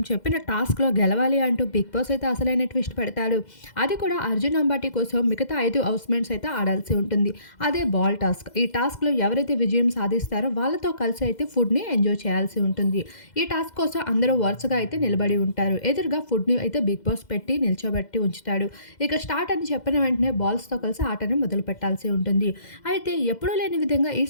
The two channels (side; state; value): right; late; 2.0 ms